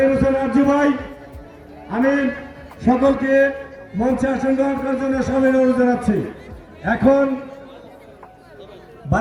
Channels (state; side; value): identical; both; correlation 1.00